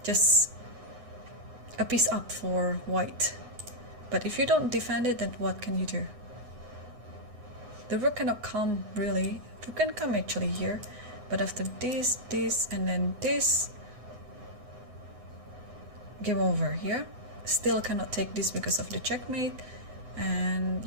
just a piece up for white. But if you don't defend it, then what can you do? The rook cannot come, really. Rook can come actually here, but after this, and then this, game over here. Still cannot take this because of the checkmate, and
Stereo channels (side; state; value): left; late; 9.6 ms